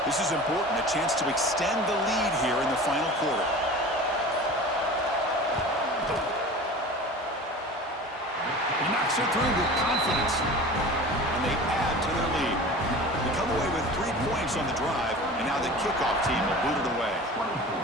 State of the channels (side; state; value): both; normal; correlation 0.37